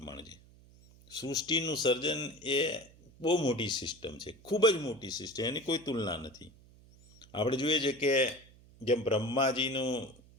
છે. સૃષ્ટિનું સર્જન એ બહુ મોટી સિસ્ટમ છે, ખૂબ જ મોટી સિસ્ટમ, એની કોઈ તુલના નથી. આપણે જોઈએ છે કે જેમ બ્રહ્માજીનું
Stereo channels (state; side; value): noise; right; hum, 25 dB below the sound